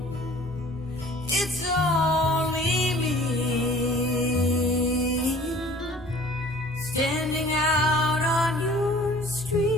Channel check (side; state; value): both; normal; correlation 0.50